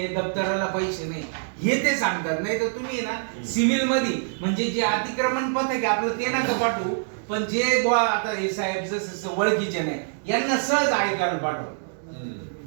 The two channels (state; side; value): silent; left; digital silence